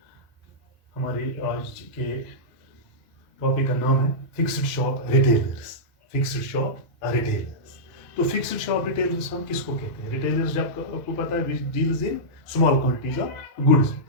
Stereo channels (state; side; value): normal; both; correlation -0.12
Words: हमारे आज के टॉपिक का नाम है fixed shop retailers. Fixed shop retailers. तो फिक्स्ड शॉप रिटेलर्स हम किसको कहते हैं? रिटेलर्स जब आपको पता है which deals in small quantities of goods,